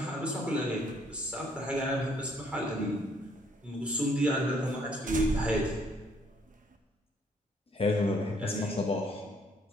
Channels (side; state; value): both; normal; correlation 0.65